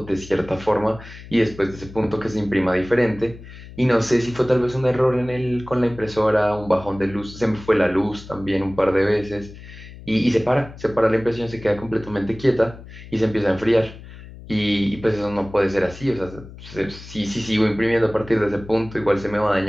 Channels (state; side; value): noise; left; hum, 16 dB below the sound